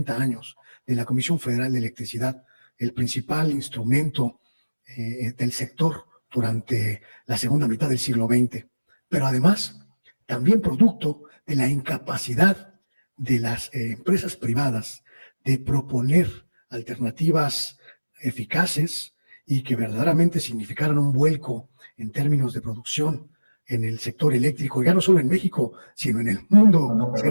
años de la Comisión Federal de Electricidad, el principal instrumento del sector durante la segunda mitad del siglo XX, pero además también producto de la incapacidad de las empresas privadas de proponer alternativas eficaces y que verdaderamente significaran un vuelco en términos de producción en el sector eléctrico, ya no solo en México, sino en el mundo, No,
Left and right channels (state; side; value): inverted; both; correlation -1.00